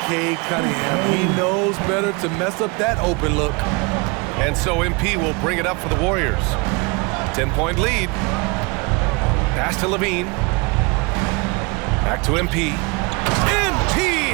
Cade Cunningham. He knows better to mess up that open look. And so MP will bring it up for the Warriors. 10-point lead. Pass to Levine. Back to MP. MP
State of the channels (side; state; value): left; quieter; 28.4 dB